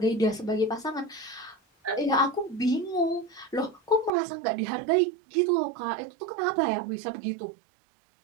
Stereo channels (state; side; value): drops out; left; at 4.1 s